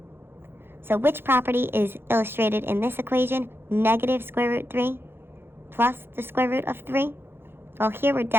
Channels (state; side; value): late; left; 0.11 ms